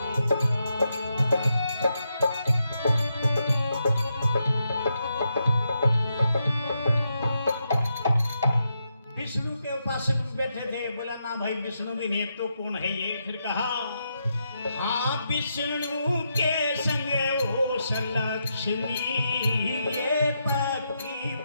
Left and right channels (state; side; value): inverted; both; correlation -0.83